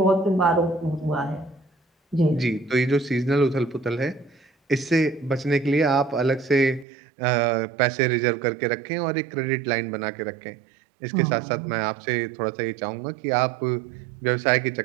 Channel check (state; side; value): drops out; left; at 6.9 s